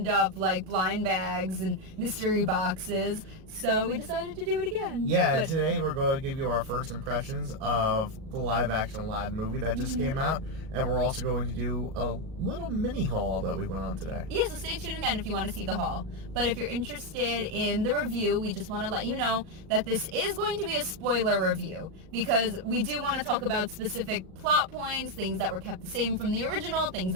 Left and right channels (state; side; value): late; left; 37 ms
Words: up like blind bags and mystery boxes. So we decided to do it again. Yeah, and today we're going to give you our first impressions of the live-action Aladdin movie that just came out. And we're also going to do a little mini haul that we went on today. Yeah, so stay tuned again if you want to see the haul. But if you're interested in the review, we just want to let you know that this is going to be a spoiler review. Because we do want to talk about specific plot points, things that were kept the same from the original, things